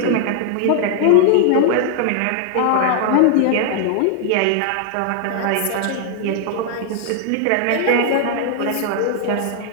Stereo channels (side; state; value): both; different; correlation 0.00